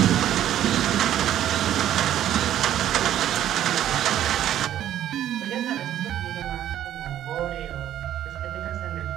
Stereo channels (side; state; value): left; quieter; 11.6 dB